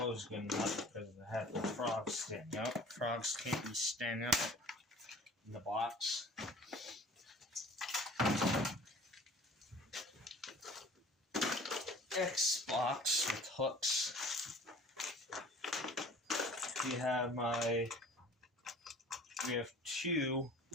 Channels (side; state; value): both; normal; correlation 0.47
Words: good enough because I have the frogs standing up. Frogs can't be standing up in the box. X box with hooks. We have 2